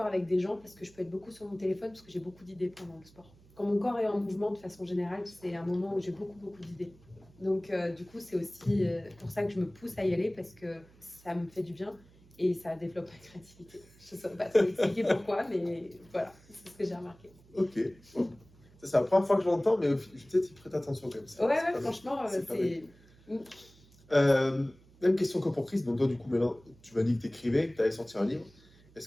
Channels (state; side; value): noise; right; hum, 26 dB below the sound